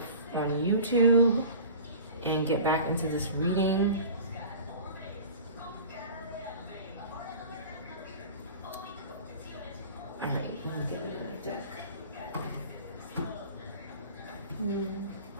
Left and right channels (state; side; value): inverted; both; correlation -0.40